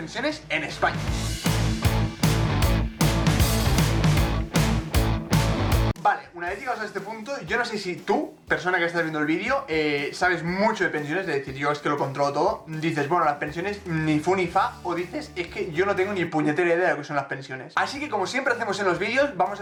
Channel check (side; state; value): both; identical; correlation 1.00